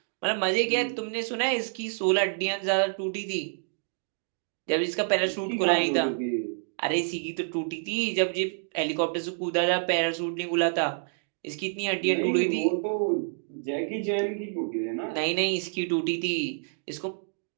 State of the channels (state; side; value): silent; left; digital silence